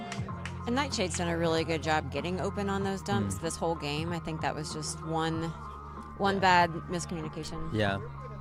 And Nightshade's done a really good job getting open on those dumps this whole game. I think that was just one bad miscommunication. Yeah.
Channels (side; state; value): both; identical; correlation 1.00